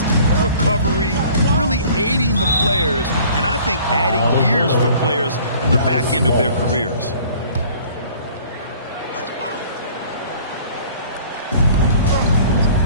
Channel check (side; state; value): both; inverted; correlation -0.51